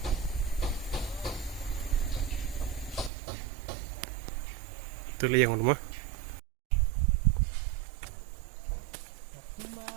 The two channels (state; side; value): drops out; left; at 3.1 s